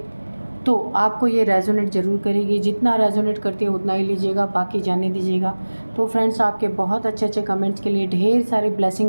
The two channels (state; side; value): inverted; both; correlation -1.00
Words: तो आपको ये रेजोनेट ज़रूर करेगी। जितना रेजोनेट करती है उतना ही लीजिएगा, बाकी जाने दीजिएगा। तो फ्रेंड्स, आपके बहुत अच्छे अच्छे कमेंट्स के लिए, ढेर सारी